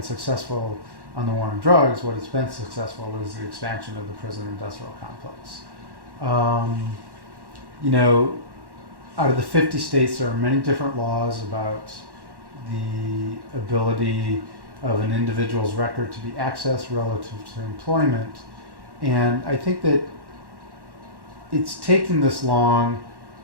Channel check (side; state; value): left; late; 1.1 ms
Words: successful on the war on drugs. What it's been successful is the expansion of the prison industrial complex. Out of the 50 states, there are many different laws about the ability of an individual's record to be accessed relative to employment. And I think that it's taken this long